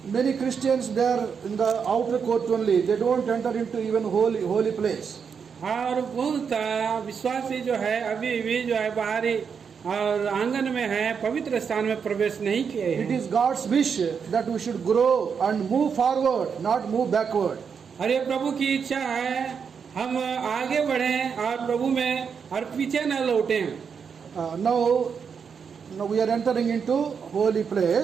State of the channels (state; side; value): quieter; left; 6.5 dB